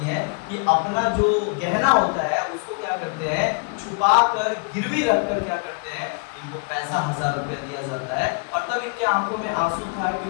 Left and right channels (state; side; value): quieter; right; 35.0 dB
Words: है कि अपना जो गहना होता है उसको क्या करते हैं, छुपा कर गिरवी रखकर क्या करते हैं, इनको पैसा 1000 रुपया दिया जाता है। और तब इनकी आंखों में आंसू था,